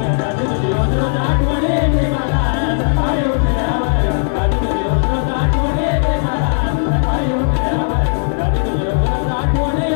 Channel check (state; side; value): silent; right; digital silence